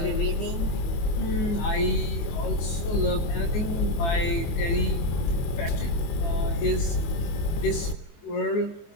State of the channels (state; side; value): late; right; 24 ms